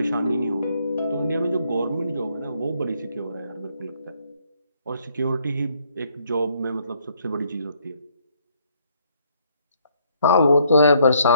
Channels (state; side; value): inverted; both; correlation -0.67